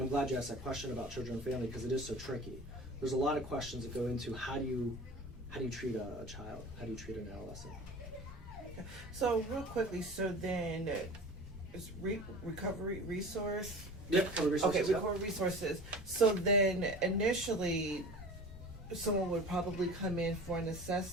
I'm glad you asked that question about children and family because it is so tricky. There's a lot of questions that go into how do you treat a child? How do you treat an adolescent? So real quickly, so then is recovery resource? Yep, recovery resources. Okay, recovery resources. So then initially, someone would probably come in for an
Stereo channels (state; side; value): normal; both; correlation 0.38